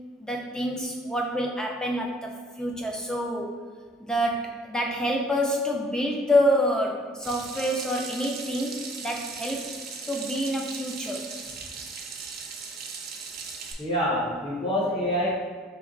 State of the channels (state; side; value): normal; both; correlation 0.56